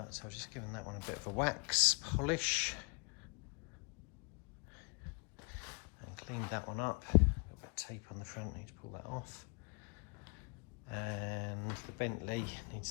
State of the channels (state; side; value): quieter; right; 33.0 dB